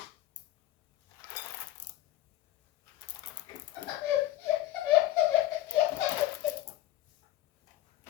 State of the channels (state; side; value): quieter; right; 14.3 dB